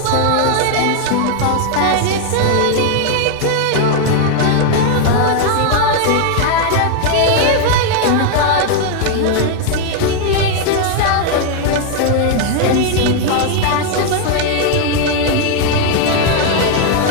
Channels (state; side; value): different; both; correlation 0.00